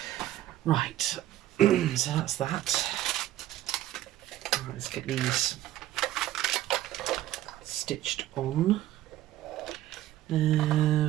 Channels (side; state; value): left; quieter; 13.8 dB